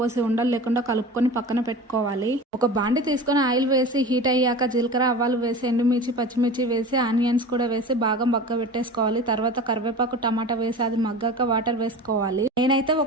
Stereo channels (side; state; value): both; normal; correlation 0.34